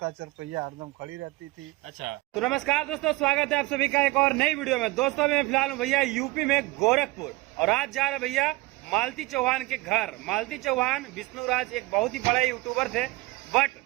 चरपैया हरदम खड़ी रहती थी। अच्छा, तो नमस्कार दोस्तों, स्वागत है आप सभी का एक और नई वीडियो में। दोस्तों मैं फिलहाल हूँ भैया यूपी में गोरखपुर, और आज जा रहे भैया मालती चौहान के घर। मालती चौहान विष्णुराज एक बहुत ही बड़े यूट्यूबर थे, बट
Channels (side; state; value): left; quieter; 22.0 dB